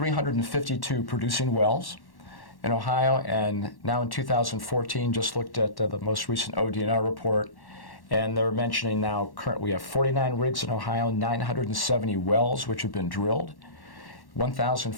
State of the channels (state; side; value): late; right; 1.1 ms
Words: producing wells in Ohio, and now in 2014, just looked at the most recent ODNR report, and they're mentioning now currently we have 49 rigs in Ohio, 970 wells which have been drilled,